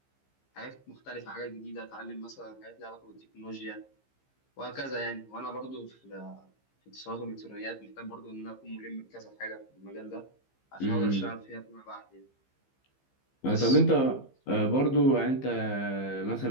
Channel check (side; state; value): right; late; 15 ms